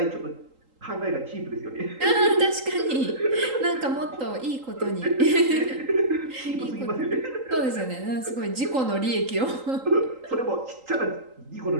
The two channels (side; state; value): left; late; 3.8 ms